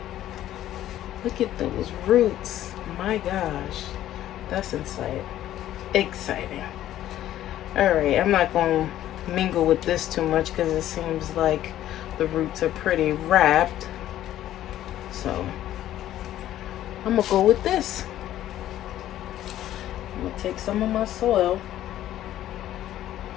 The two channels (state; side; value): quieter; right; 12.8 dB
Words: Look at those roots. My gosh, that's exciting. All right, I'm not going to mingle with this too much because it seems like the roots are pretty wrapped. So I'm gonna go with this. I'm gonna take some of my soil.